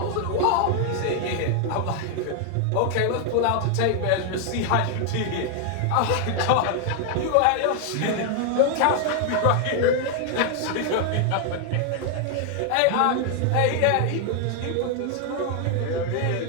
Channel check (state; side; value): different; both; correlation 0.00